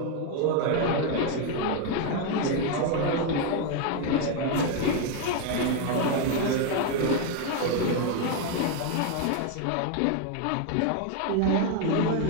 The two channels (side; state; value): both; different; correlation 0.01